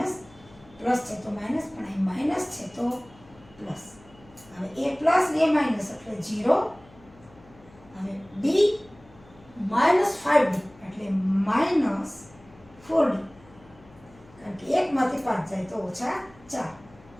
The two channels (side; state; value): left; noise; hum, 25 dB below the sound